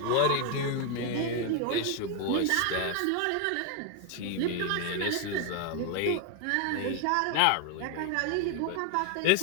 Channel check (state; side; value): different; both; correlation 0.01